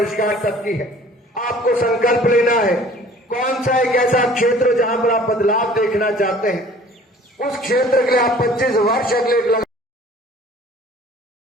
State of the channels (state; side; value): normal; both; correlation 0.50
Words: तक की है, आपको संकल्प लेना है कौन सा एक ऐसा क्षेत्र जहां पर आप बदलाव देखना चाहते हैं, उस क्षेत्र के लिए आप 25 वर्ष अगले लगा।